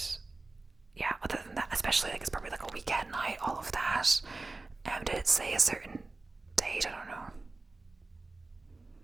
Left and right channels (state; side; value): quieter; left; 3.3 dB